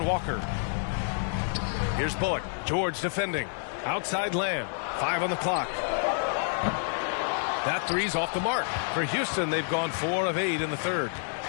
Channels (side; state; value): right; silent; digital silence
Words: Walker. Here's Bullock. George defending. Outside Lamb. 5 on the clock. That three's off the mark. For Houston, they've gone 4 of 8 in the third.